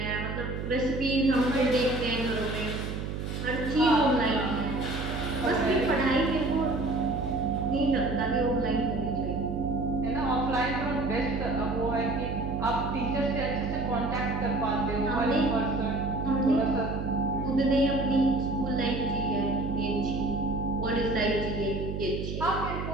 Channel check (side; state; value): right; noise; hum, 4 dB below the sound